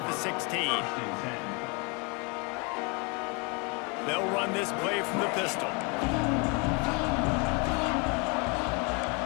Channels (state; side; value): quieter; right; 30.7 dB